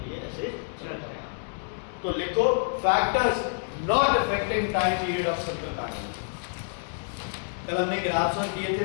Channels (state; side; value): silent; right; digital silence